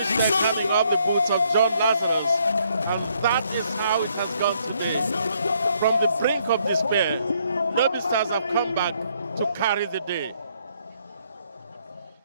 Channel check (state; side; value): inverted; both; correlation -0.70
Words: there coming off the boots of John Lazarus. And that is how it has gone today. From the brink of despair, Lobi Stars have come back to carry the day.